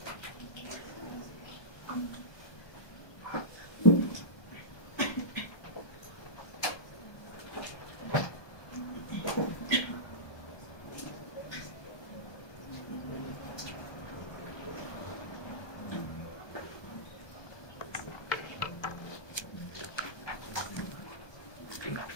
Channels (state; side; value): late; right; 1.2 ms